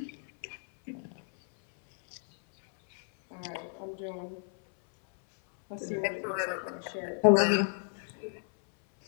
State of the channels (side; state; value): right; silent; 57 dB below the other